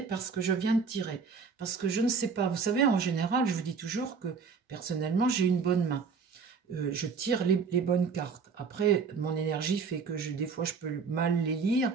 parce que je viens de tirer. Parce que je ne sais pas, vous savez, en général, je vous dis toujours que personnellement, j'ai une bonne main. Je tire les bonnes cartes. Après, mon énergie fait que des fois, je peux mal les lire.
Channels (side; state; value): left; quieter; 5.4 dB